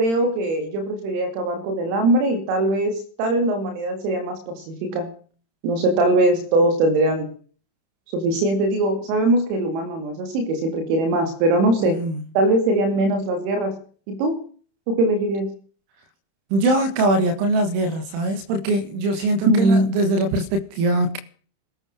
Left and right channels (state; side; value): late; left; 31 ms